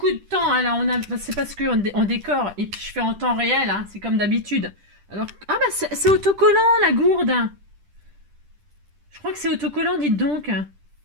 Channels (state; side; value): late; left; 10 ms